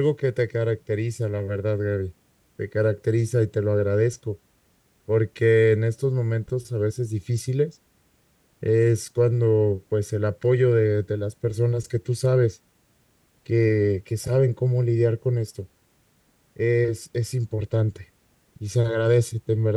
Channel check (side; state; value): both; identical; correlation 1.00